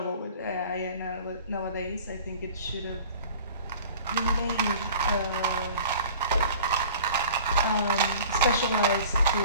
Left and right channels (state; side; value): inverted; both; correlation -0.45